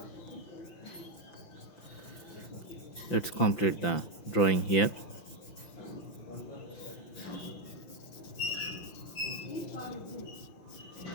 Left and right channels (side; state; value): right; late; 5.9 ms